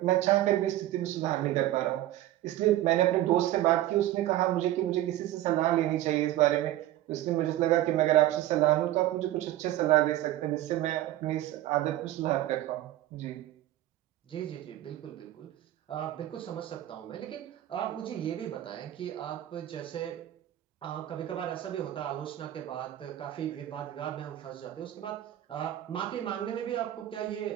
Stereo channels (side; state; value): left; quieter; 14.2 dB